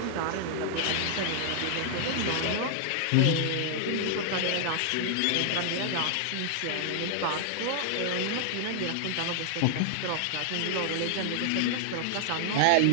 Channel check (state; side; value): different; both; correlation 0.00